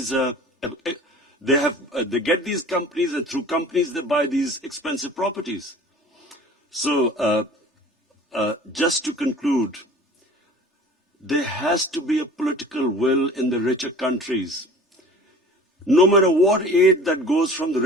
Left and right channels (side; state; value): both; normal; correlation 0.44